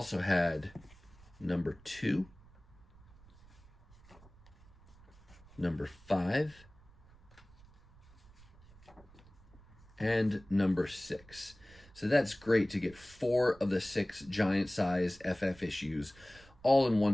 had #2, #5, and #6. So that's great to get 4 of the 6 giant size FF issues all in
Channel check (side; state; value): right; noise; rumble, 24 dB below the sound